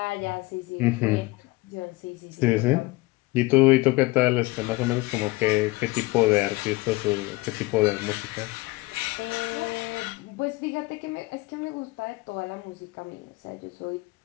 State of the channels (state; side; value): quieter; right; 21.8 dB